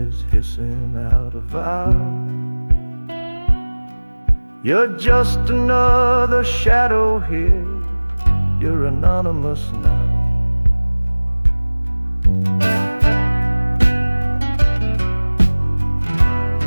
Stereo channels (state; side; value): inverted; both; correlation -1.00